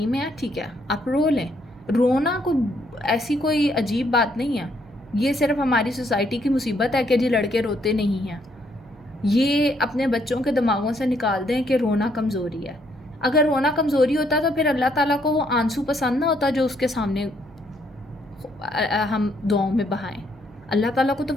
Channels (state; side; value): noise; right; hum, 25 dB below the sound